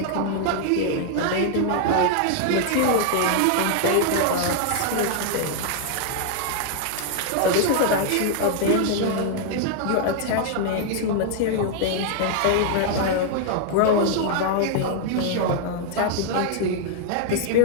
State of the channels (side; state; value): both; different; correlation 0.00